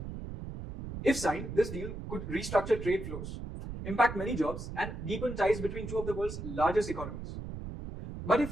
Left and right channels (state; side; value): noise; right; rumble, 8 dB below the sound